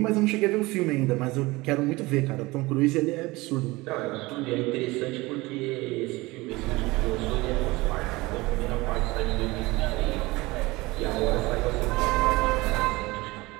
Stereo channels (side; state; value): left; quieter; 21.7 dB